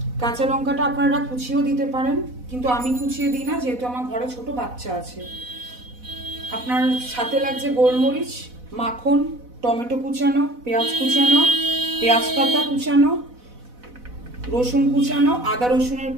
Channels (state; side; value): late; left; 4.1 ms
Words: কাঁচা লঙ্কাটা আপনারা কুচিয়েও দিতে পারেন, কিন্তু আমি কুচিয়ে দিই না যেহেতু আমার ঘরে ছোট বাচ্চা আছে। আপনার সাথে লাগছে গোলমরিচ, মাখন, টমেটো কুচানো, পেঁয়াজ কুচানো, পেঁয়াজ পাতা কুচানো, রসুন কুচানো, আদা রসুনের